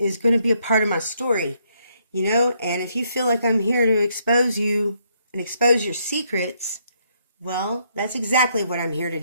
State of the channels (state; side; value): inverted; both; correlation -0.72